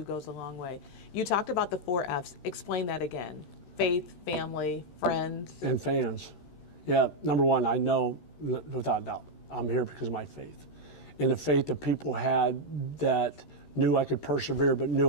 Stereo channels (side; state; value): right; late; 13 ms